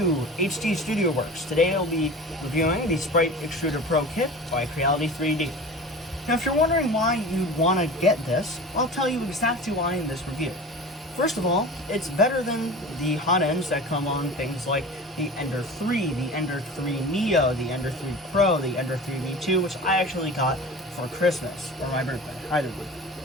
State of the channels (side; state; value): both; normal; correlation 0.36